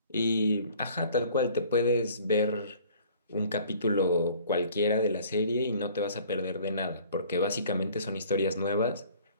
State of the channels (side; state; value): both; inverted; correlation -0.52